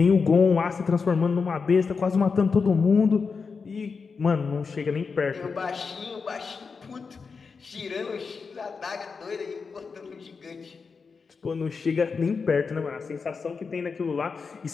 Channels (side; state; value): right; quieter; 5.1 dB